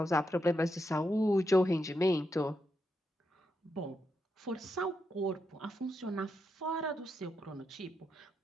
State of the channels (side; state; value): both; normal; correlation 0.84